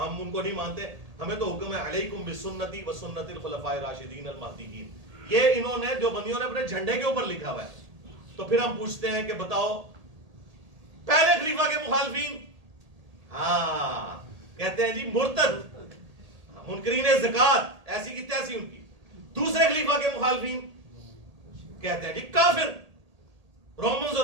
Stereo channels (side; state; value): left; late; 1.8 ms